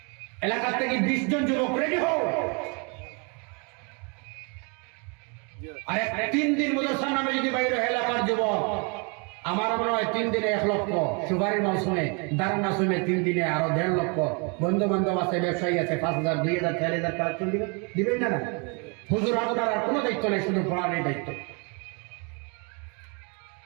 এলাকা থেকে 20 জন যুবক রেডি হও, আর 3 দিন মাদ্রাসার নামে যদি বাইরে এলাকার যুবক, আমার মনে হয় 3 দিনে 1 লক্ষ, সুপারির মৌসুমে, দারার মৌসুমে 3 দিনে আরো 1.5 লক্ষ। বন্ধু বান্ধব আছে, ব্যবসায়ী আছে, 5,000 2,000 4,000 কালেকশন দিবেন না। হুজুর আপনার আর কোনো দায়িত্ব নেই, শুধু পড়ার দায়িত্ব।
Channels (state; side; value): quieter; left; 33.4 dB